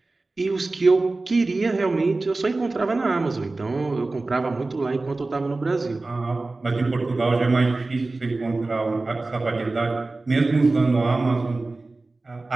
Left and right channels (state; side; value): quieter; left; 3.3 dB